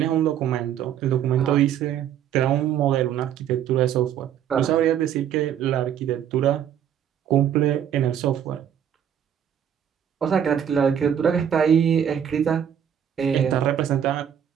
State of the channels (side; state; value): left; quieter; 9.3 dB